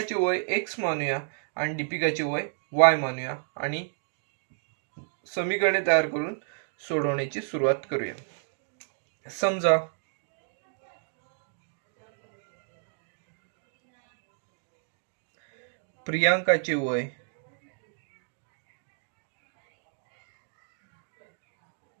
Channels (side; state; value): left; silent; digital silence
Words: वय x मानूया आणि दीपिकाचे वय y मानूया आणि समीकरणे तयार करून सोडवण्याची सुरुवात करूया. समजा प्रियांकाचे वय